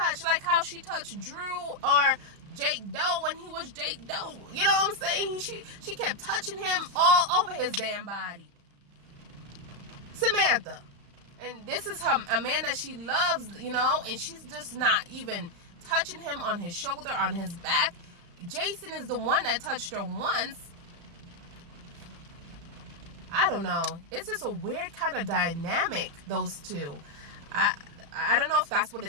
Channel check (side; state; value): left; late; 35 ms